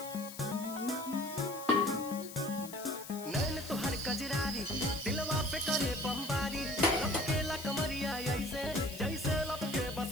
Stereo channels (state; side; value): noise; left; hiss, 13 dB below the sound